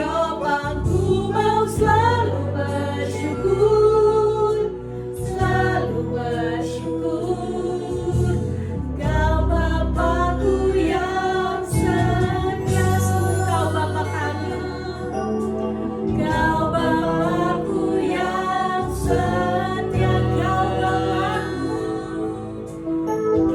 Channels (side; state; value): both; identical; correlation 1.00